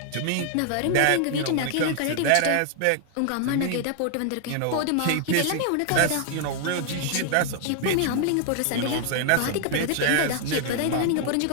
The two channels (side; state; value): both; different; correlation 0.00